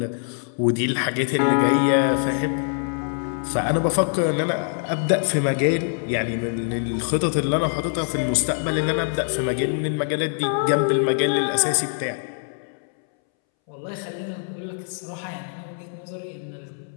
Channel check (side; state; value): right; silent; 63 dB below the other